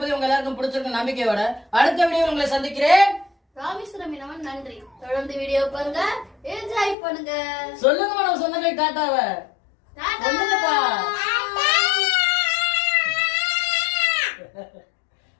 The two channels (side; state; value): right; drops out; at 7.0 s